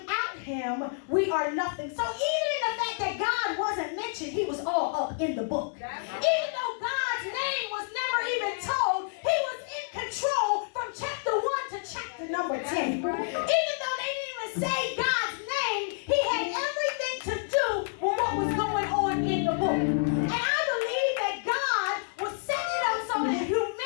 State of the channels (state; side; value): silent; right; digital silence